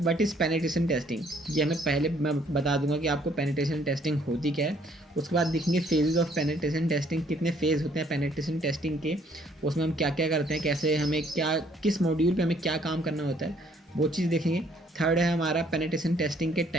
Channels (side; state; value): both; normal; correlation 0.64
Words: इज़ पेनिट्रेशन टेस्टिंग, ये हमें पहले मैं बता दूंगा कि आपको पेनिट्रेशन टेस्टिंग होती क्या है। उसके बाद देखेंगे फेजेस ऑफ पेनिट्रेशन टेस्टिंग, कितने फेज़ होते हैं पेनिट्रेशन टेस्टिंग के, उसमें हम क्या क्या करते हैं, कैसे हमें क्या किस मॉड्यूल पे हमें क्या काम करना होता है, वो चीज़ देखेंगे। थर्ड है हमारा पेनिट्रेशन टेस्टिंग के